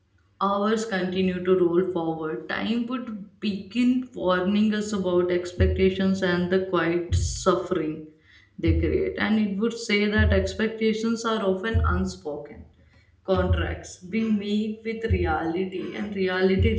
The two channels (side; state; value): both; identical; correlation 1.00